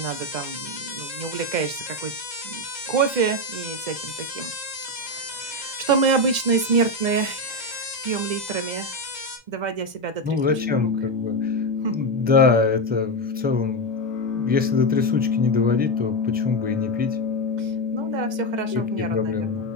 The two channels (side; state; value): left; late; 2.1 ms